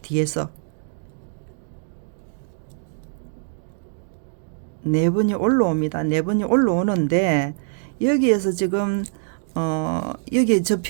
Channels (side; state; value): left; silent; digital silence